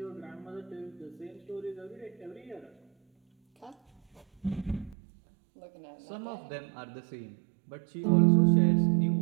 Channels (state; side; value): drops out; left; at 5.0 s